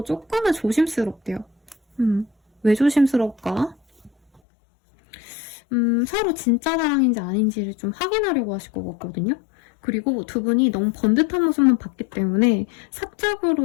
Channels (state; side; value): drops out; right; at 4.4 s